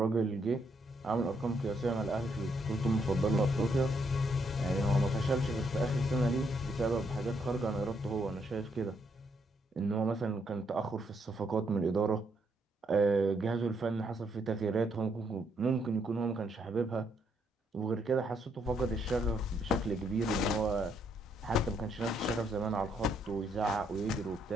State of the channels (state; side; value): normal; both; correlation 0.74